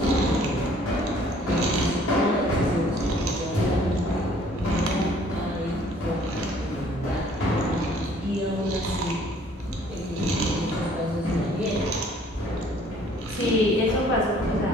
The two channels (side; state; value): both; normal; correlation 0.58